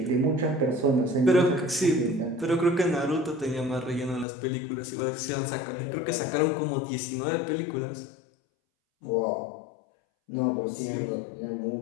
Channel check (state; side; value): drops out; right; at 4.2 s